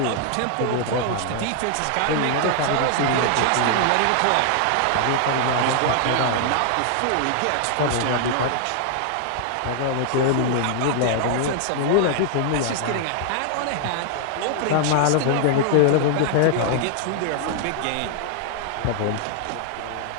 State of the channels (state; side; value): different; both; correlation 0.00